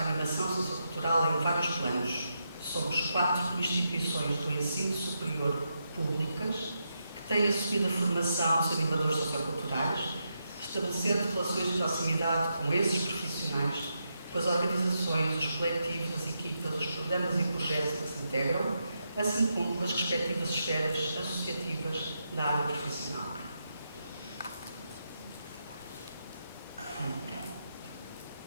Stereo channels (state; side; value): inverted; both; correlation -0.83